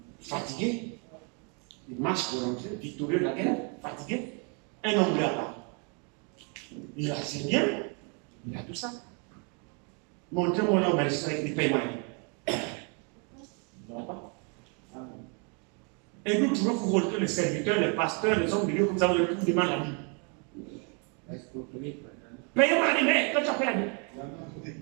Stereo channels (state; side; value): quieter; left; 36.6 dB